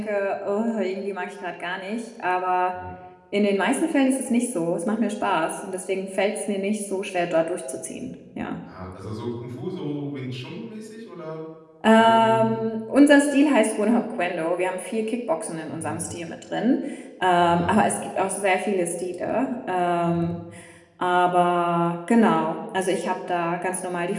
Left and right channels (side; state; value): both; identical; correlation 1.00